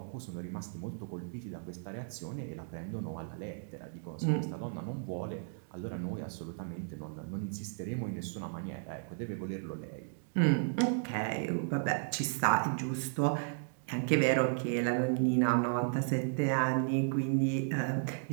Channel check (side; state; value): left; silent; digital silence